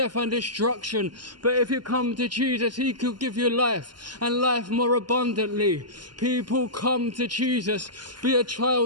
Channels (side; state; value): left; late; 0.71 ms